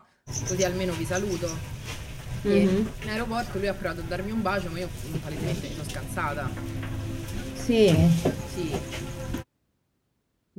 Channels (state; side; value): identical; both; correlation 1.00